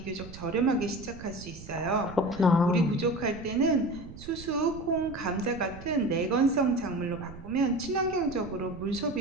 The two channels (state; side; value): noise; right; rumble, 15 dB below the sound